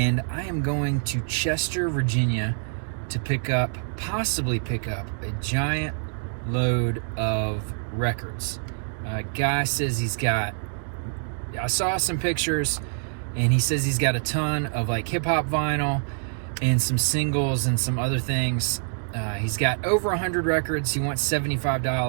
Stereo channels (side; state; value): left; silent; digital silence